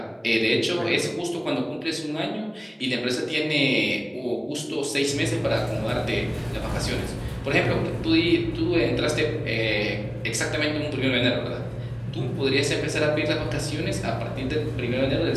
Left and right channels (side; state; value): both; identical; correlation 1.00